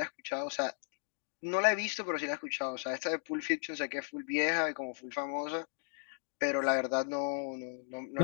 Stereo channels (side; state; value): right; silent; digital silence